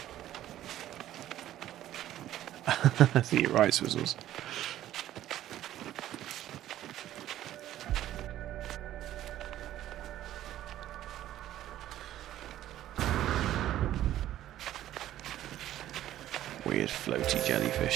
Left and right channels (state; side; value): quieter; left; 12.9 dB